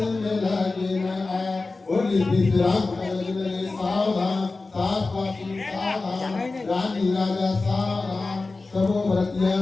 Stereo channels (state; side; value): quieter; right; 3.6 dB